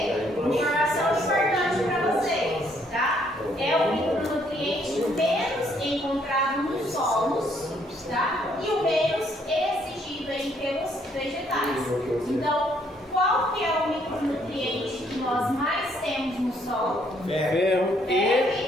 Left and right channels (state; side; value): normal; both; correlation 0.68